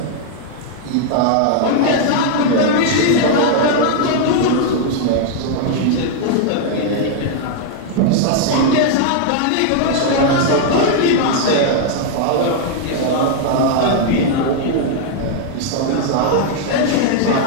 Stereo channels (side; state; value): both; different; correlation 0.00